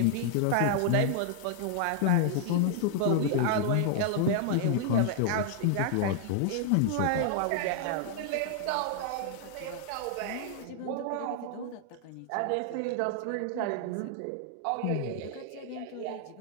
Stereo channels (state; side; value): different; both; correlation 0.00